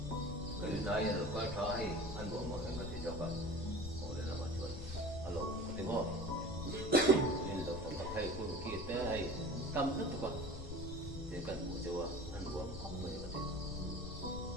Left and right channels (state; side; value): noise; left; rumble, 8 dB below the sound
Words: cái này là coi thấy anh bộ mà anh có thể cho bạn ngồi để làm mà chuẩn alo có tiếng không nên là phải thầy cô kia tới hay tâm rất là con để cần một chỗ ăn uống không phải có thể